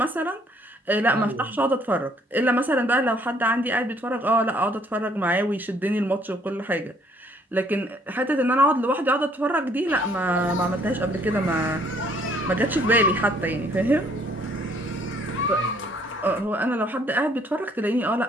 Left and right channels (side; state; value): both; normal; correlation 0.63